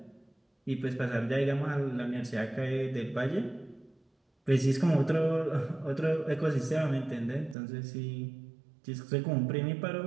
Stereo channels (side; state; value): left; drops out; at 7.6 s